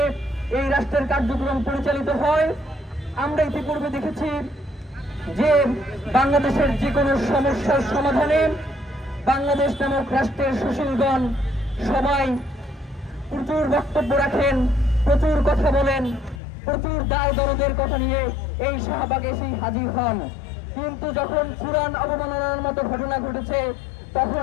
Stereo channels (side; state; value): right; drops out; at 16.4 s